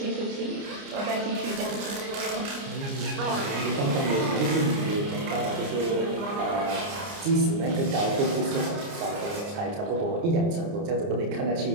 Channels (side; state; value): left; late; 29 ms